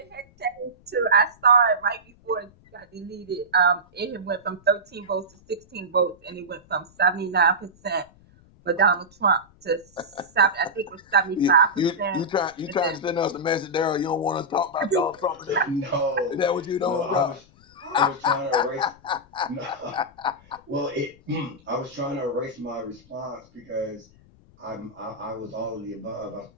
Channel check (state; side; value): noise; left; rumble, 28 dB below the sound